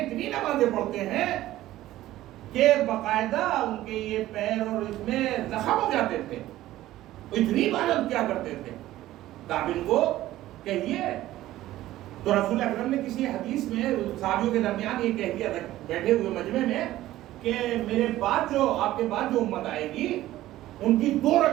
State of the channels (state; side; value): quieter; left; 15.1 dB